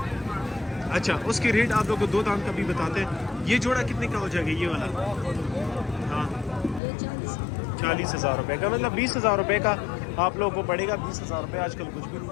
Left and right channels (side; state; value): right; drops out; at 6.8 s